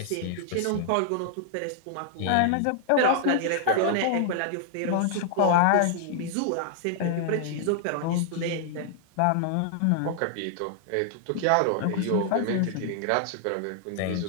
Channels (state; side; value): different; both; correlation -0.01